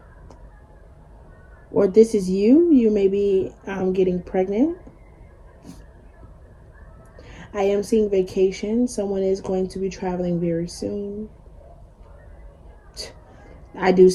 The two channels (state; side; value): identical; both; correlation 1.00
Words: or this is you. You may be getting pregnant. I am seeing vacation. Someone is going to be traveling very soon. I do